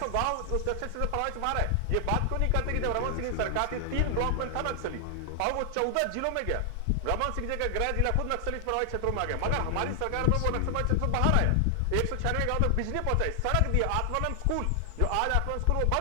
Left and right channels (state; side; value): different; both; correlation 0.00